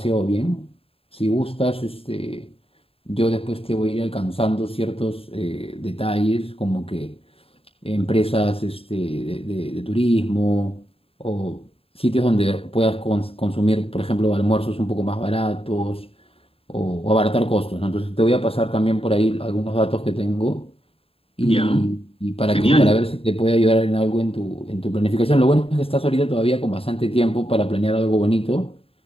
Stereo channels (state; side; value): late; right; 0.27 ms